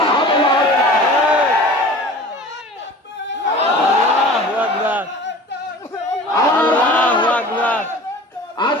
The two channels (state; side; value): normal; both; correlation 0.40